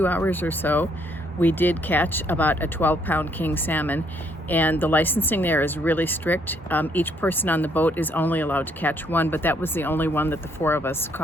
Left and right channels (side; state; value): both; normal; correlation 0.69